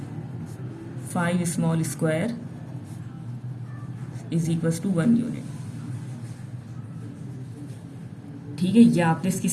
5 small square is equals to 1 unit. ठीक है, ये आपने इसकी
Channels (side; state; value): both; identical; correlation 1.00